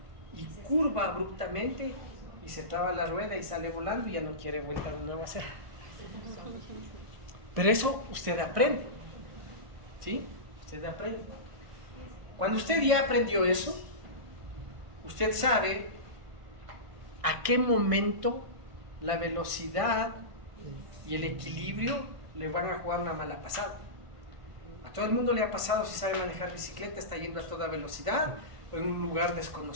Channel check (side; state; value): left; late; 1.5 ms